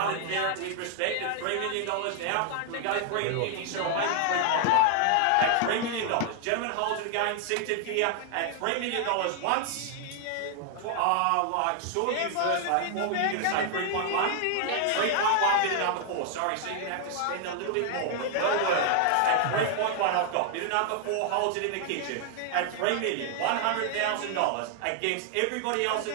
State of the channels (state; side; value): different; both; correlation 0.00